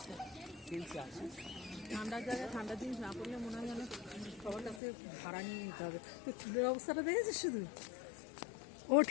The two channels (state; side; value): drops out; right; at 4.8 s